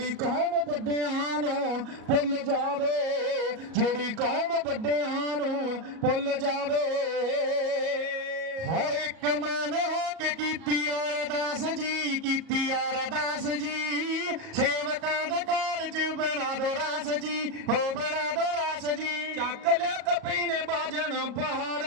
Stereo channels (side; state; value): left; late; 37 ms